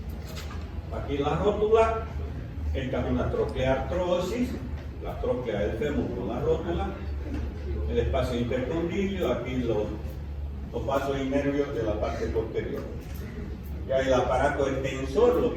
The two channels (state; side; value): identical; both; correlation 1.00